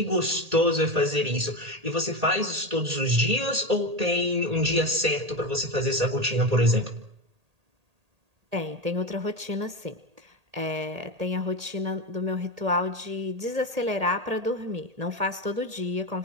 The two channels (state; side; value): late; left; 1.8 ms